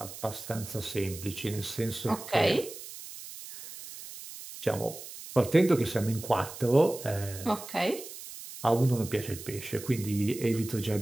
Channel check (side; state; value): right; noise; hiss, 13 dB below the sound